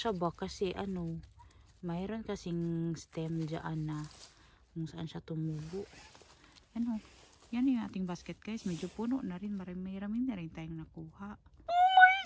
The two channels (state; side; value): identical; both; correlation 1.00